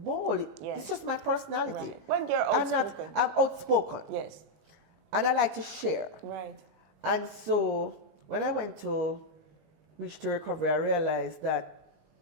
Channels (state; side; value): late; left; 19 ms